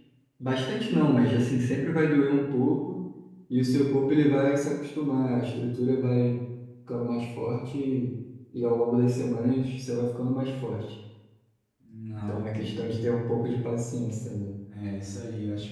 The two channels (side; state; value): both; identical; correlation 1.00